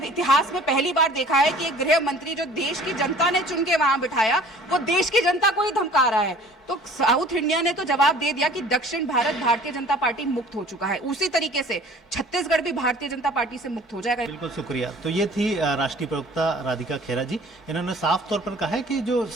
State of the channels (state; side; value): normal; both; correlation 0.49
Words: में पहली बार देखा है कि एक गृह मंत्री जो देश की जनता ने चुन के वहां बिठाया, वो देश की जनता को ही धमका रहा है। तो साउथ इंडिया ने तो जवाब दे दिया कि दक्षिण भारत भारतीय जनता पार्टी मुक्त हो चुका है। उसी तरीके से छत्तीसगढ़ भी भारतीय जनता पार्टी से मुक्त हो जाएगा। बिल्कुल, शुक्रिया। तो ये थी राष्ट्रीय प्रवक्ता राधिका खेरा जी। इन्होंने साफ तौर पर कहा है कि जो